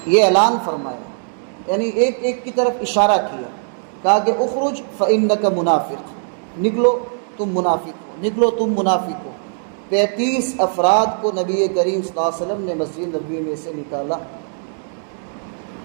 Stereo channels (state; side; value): silent; left; 65 dB below the other